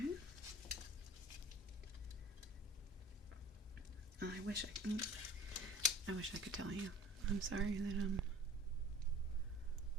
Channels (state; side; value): normal; both; correlation 0.44